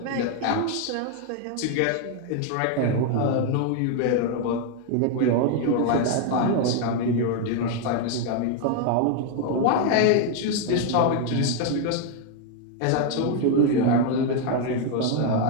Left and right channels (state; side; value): different; both; correlation 0.01